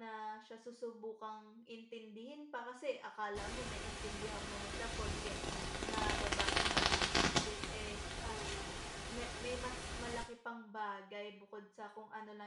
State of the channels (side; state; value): both; identical; correlation 1.00